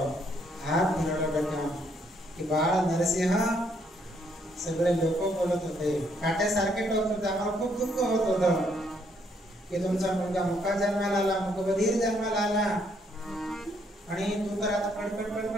हात फिरवला डोक्यावर की बाळ नरसिंह. सगळे लोक बोलत होते, काट्यासारखे टोचत होते. आम्हाला खूप दुःख होत होतं की तुमचा मुलगा मुका जन्माला आला, मुकबधीर जन्माला आला आणि तू तर आता पडपड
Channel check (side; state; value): both; normal; correlation 0.70